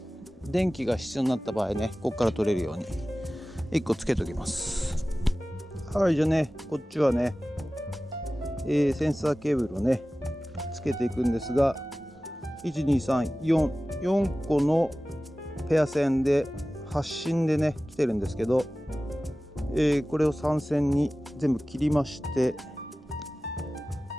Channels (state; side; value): normal; both; correlation 0.96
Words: 電気が必要になった場合ね、ここから取れるように1個つけておきます。はい、じゃあね、こっちはね、センサーケーブルをねつけていくんですが、12344個のペア線で発信でね来てるんですけど、これを3線に全部切りまして、